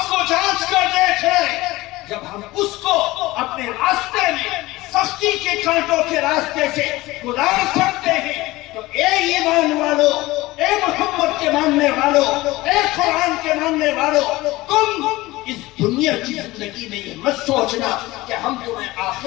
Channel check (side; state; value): right; quieter; 19.4 dB